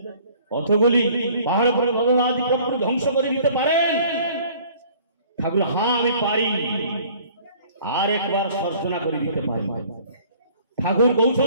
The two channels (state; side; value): inverted; both; correlation -0.53